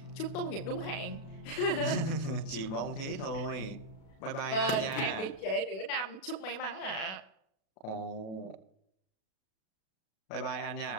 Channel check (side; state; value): right; late; 37 ms